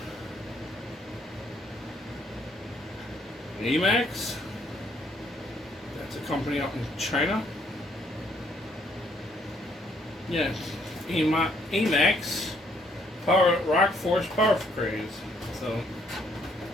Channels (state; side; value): normal; both; correlation 0.68